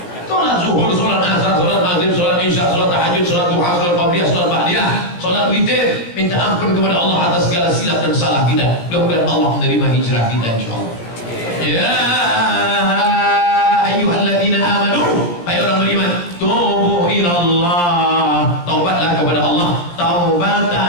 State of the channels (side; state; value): right; late; 17 ms